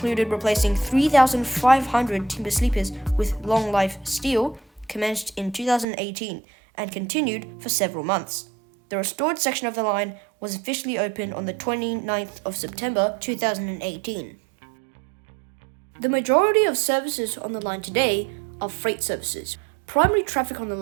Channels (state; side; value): drops out; left; at 5.9 s